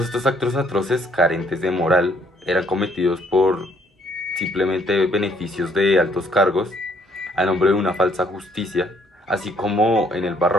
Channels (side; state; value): both; normal; correlation 0.65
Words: estos actos atroces, carentes de moral, eran cometidos por simplemente beneficios de altos cargos a nombre de una falsa justicia, así como en el